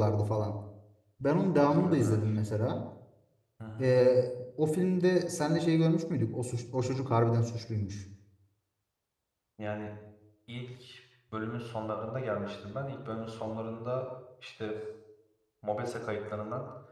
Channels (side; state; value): both; identical; correlation 1.00